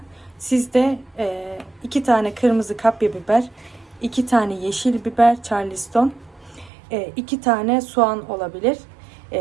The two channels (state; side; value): drops out; left; at 6.7 s